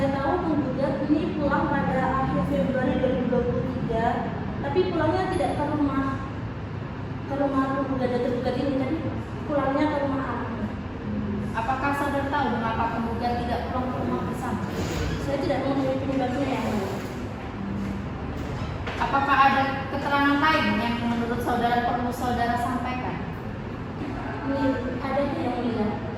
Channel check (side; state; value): both; identical; correlation 1.00